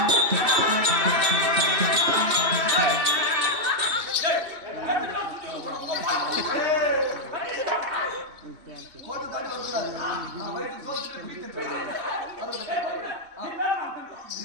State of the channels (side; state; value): left; late; 3.2 ms